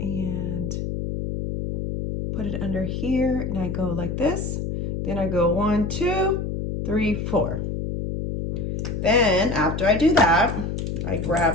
and put it under here, and I go like this. Then I go 1, 2, 3, 4. Then after I do that, I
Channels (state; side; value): noise; left; hum, 3 dB below the sound